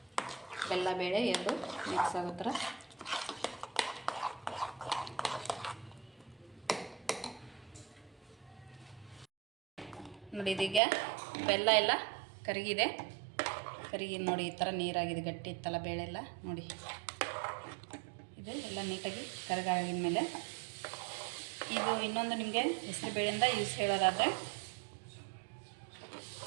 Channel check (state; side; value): drops out; left; at 10.8 s